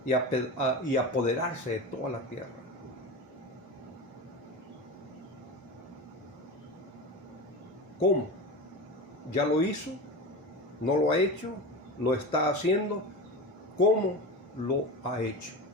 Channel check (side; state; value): both; normal; correlation 0.26